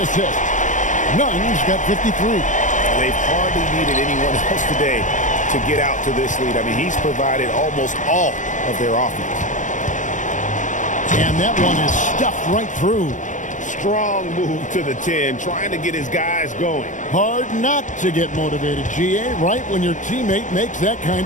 assist. Nunn's got 53. They've hardly needed anyone else today to get out to this lead. I mean, he's provided almost all of their offense. And that one is stuffed right through. Strong move to the 10, trying to get his guys going. Hard not to get motivated, GA, right when your teammate makes that kind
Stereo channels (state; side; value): late; right; 0.37 ms